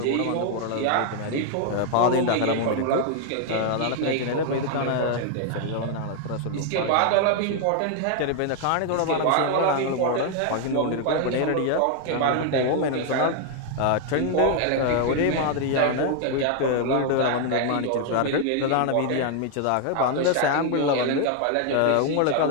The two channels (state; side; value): different; both; correlation 0.00